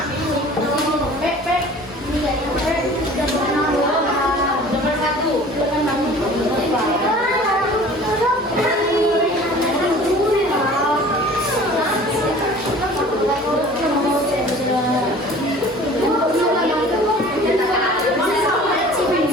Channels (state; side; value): normal; both; correlation 0.46